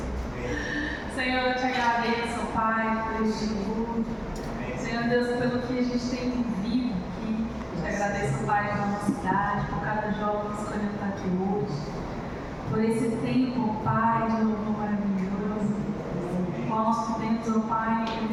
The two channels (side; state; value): both; identical; correlation 1.00